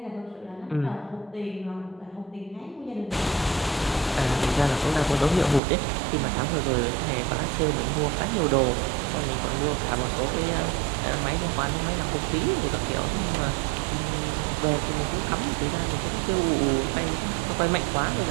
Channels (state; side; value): drops out; left; at 5.6 s